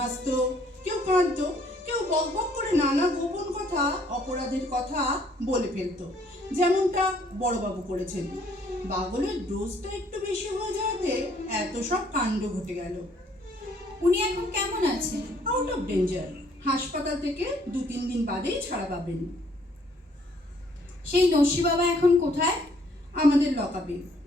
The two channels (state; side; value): normal; both; correlation 0.63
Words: কেউ কাঁদতো, কেউ বকবক করে নানা গোপন কথা, অপরাধের কথা বলে ফেলতো, যেমনটা বড়বাবু করেছেন। বাগলের ডোজটা একটু বেশি হয়ে যাওয়াতে এত সব কাণ্ড ঘটে গেল। উনি এখন কেমন আছেন? Out of danger. হাসপাতাল থেকে 2-3 দিন বাদেই ছাড়া পাবেন। সেই নস্যি বাবা এখন কোথায়? আমাদের লকআপে।